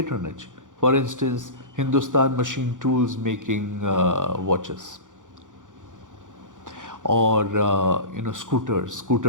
For instance, Hindustan Machine Tools making watches, or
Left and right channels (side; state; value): left; late; 0.87 ms